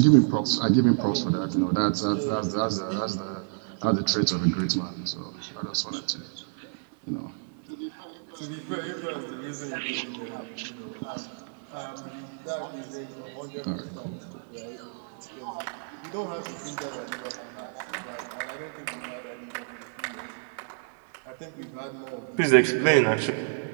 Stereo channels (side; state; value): left; silent; 58 dB below the other